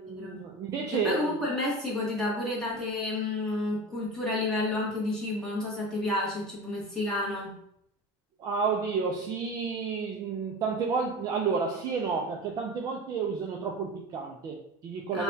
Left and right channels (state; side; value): normal; both; correlation 0.31